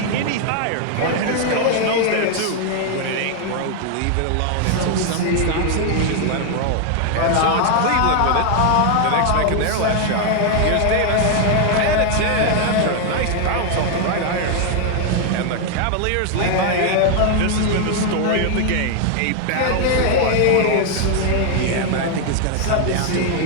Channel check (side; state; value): both; different; correlation 0.00